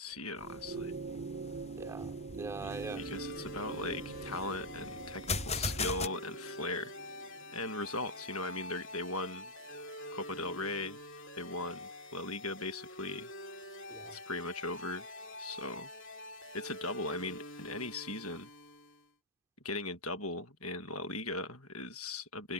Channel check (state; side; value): normal; both; correlation -0.03